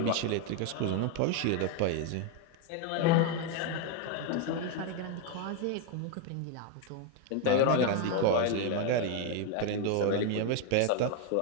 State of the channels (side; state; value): both; different; correlation 0.01